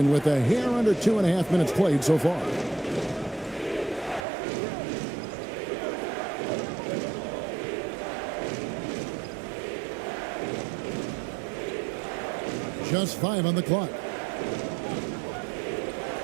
with a hair under 2.5 minutes played so far. Just 5 on the clock.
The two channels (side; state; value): left; drops out; at 4.2 s